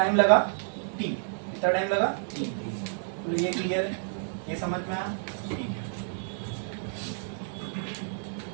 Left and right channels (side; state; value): left; silent; digital silence